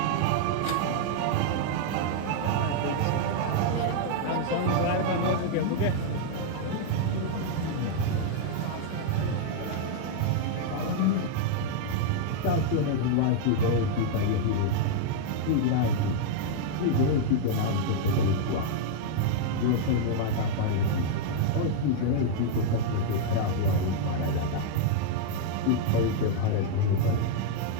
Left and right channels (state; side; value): different; both; correlation -0.01